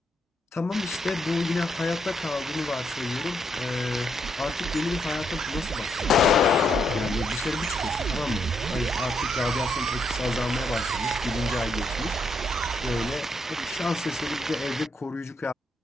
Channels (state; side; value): normal; both; correlation 0.77